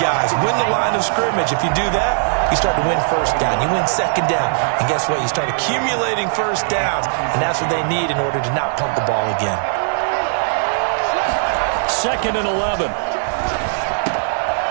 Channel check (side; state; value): left; silent; digital silence